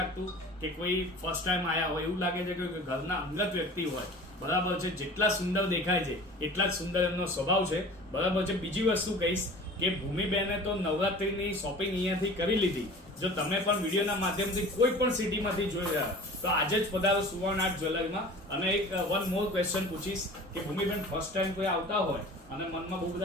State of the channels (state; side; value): normal; both; correlation 0.41